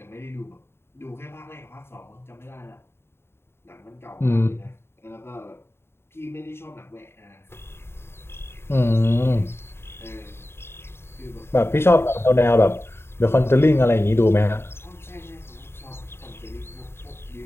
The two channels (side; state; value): right; late; 0.12 ms